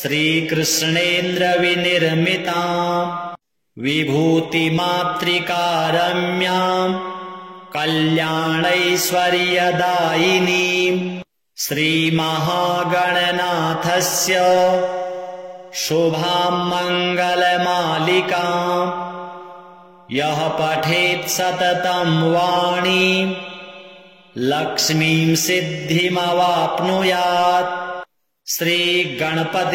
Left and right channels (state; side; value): identical; both; correlation 1.00